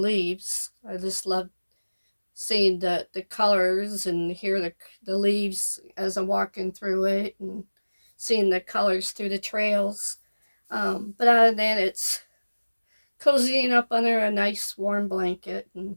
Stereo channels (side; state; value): both; inverted; correlation -1.00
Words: I just love seeing the colors and hear the leaves as I'm walking through it, and seeing the colors through the trails. But other than that, it's cozying up under a nice warm blanket and